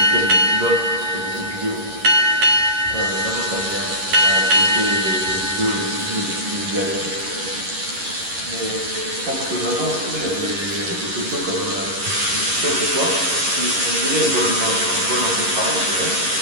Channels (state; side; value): late; left; 11 ms